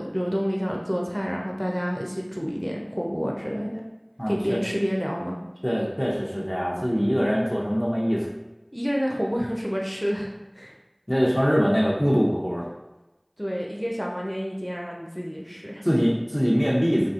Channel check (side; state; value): both; identical; correlation 1.00